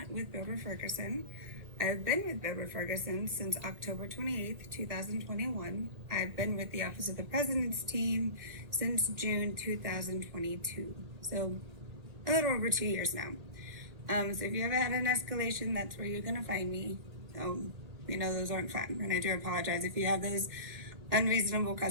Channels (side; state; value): left; late; 1.8 ms